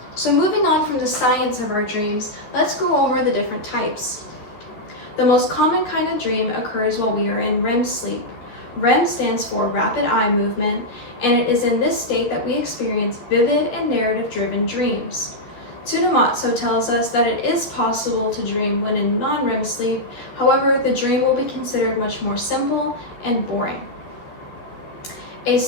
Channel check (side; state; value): right; late; 13 ms